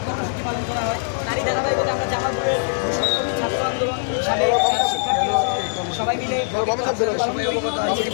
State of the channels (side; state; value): right; silent; digital silence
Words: কর্মসূচি পালন করা হয়। তারই ধারাবাহিকতা আমরা জামালপুরের সবাই মিলে সবাই অবগত আছে।